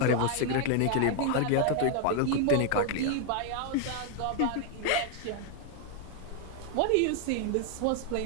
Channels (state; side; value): different; both; correlation 0.00